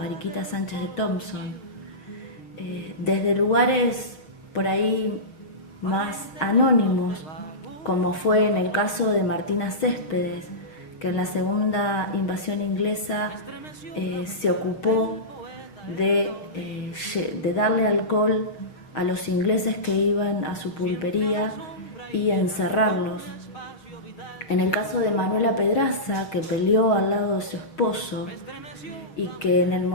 Sánchez de Thompson, desde lugares por ahí más anónimos, como fue en el caso de Martina Céspedes, que en la segunda invasión inglesa se ocupó de darle alcohol a los ingleses que iban a su pulpería y encerrarlos. En el caso de Manuela Pedraza, que peleó al lado de su esposo y que en el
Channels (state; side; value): late; right; 6.9 ms